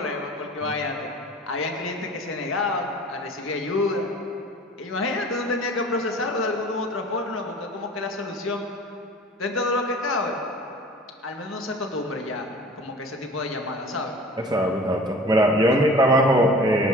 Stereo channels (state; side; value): normal; both; correlation 0.43